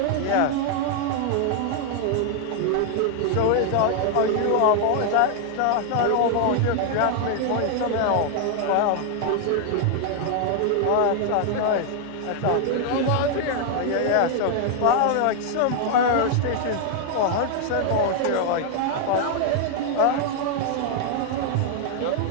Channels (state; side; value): different; both; correlation 0.00